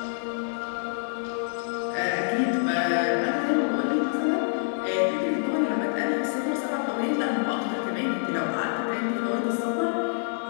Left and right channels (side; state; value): right; silent; 60 dB below the other